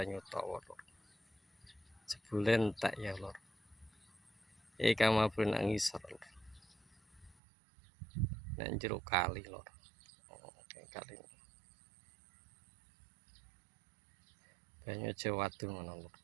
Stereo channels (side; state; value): left; drops out; at 7.4 s